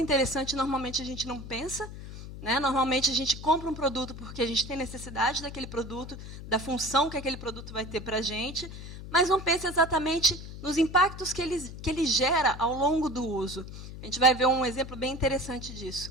interessante, normalmente a gente não pensa. Né? Normalmente, a gente compra um produto porque a gente tem necessidade daquele produto, da função que aquele produto vai ter para a gente, mas não pensa exatamente nos impactos que ele gera ao longo do uso. A gente vai ver um exemplo bem interessante disso.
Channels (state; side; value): noise; left; hum, 11 dB below the sound